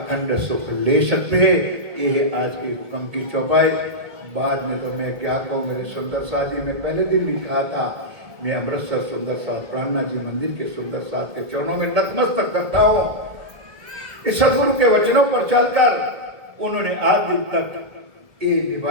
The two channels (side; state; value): left; late; 1.7 ms